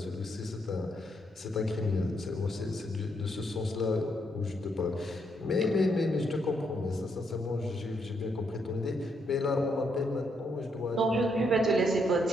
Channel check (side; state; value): both; normal; correlation 0.76